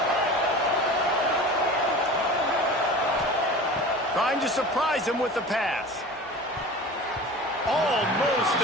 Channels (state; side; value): normal; both; correlation 0.37